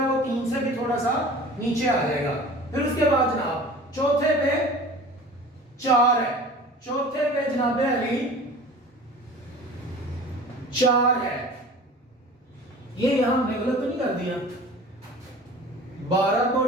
वो 3 से भी थोड़ा सा नीचे आ जाएगा। फिर उसके बाद जनाब चौथे पे 4 है, चौथे पे जनाब अली 4 है। ये यहां हमने गलत तो नहीं कर दिया, 12 को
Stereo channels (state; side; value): normal; both; correlation 0.41